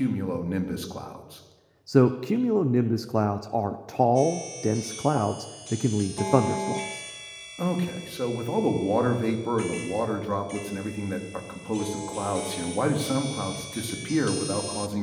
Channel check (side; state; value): both; identical; correlation 1.00